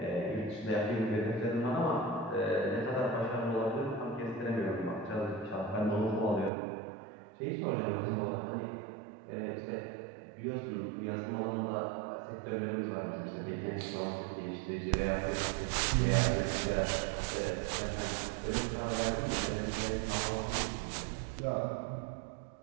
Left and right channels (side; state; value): left; drops out; at 6.5 s